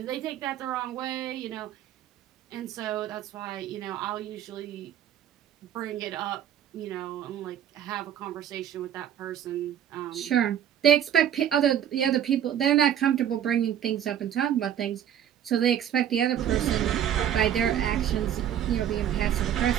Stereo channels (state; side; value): quieter; left; 10.1 dB